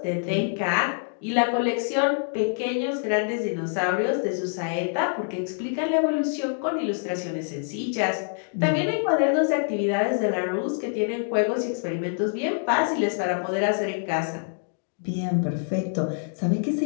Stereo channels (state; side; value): silent; right; digital silence